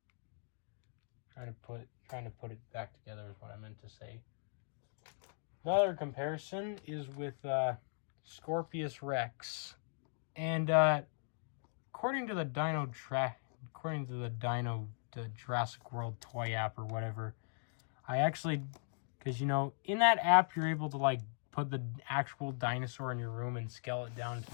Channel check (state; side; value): silent; right; digital silence